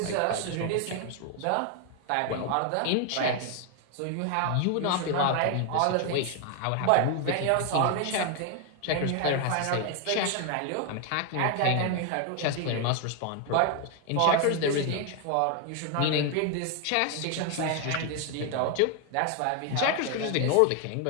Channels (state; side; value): different; both; correlation 0.00